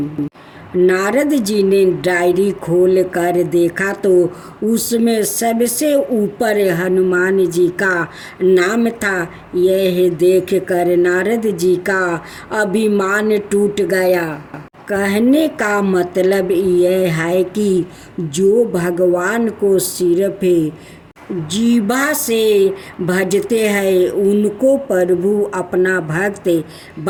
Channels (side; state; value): both; identical; correlation 1.00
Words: नारद जी ने डायरी खोल कर देखा तो उसमें सबसे ऊपर हनुमान जी का नाम था। यह देखकर नारद जी का अभिमान टूट गया। कहने का मतलब यह है कि जो भगवान को सिर्फ जीभा से भजते हैं उनको प्रभु अपना भक्त